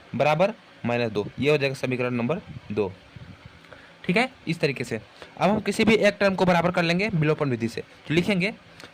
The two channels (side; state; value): both; identical; correlation 1.00